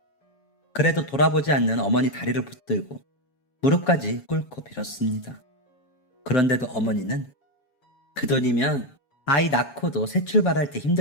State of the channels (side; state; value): right; late; 7.2 ms